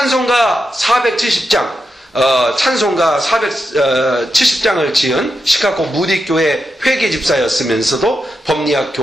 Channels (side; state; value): both; normal; correlation 0.87